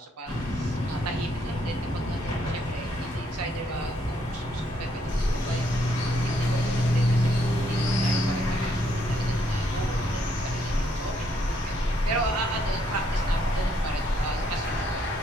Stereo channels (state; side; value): normal; both; correlation 0.72